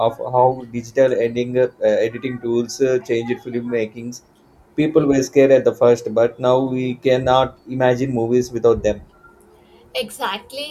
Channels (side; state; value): both; identical; correlation 1.00